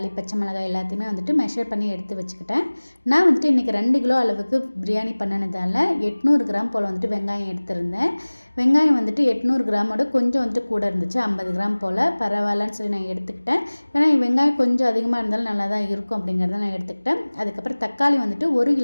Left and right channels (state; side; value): inverted; both; correlation -1.00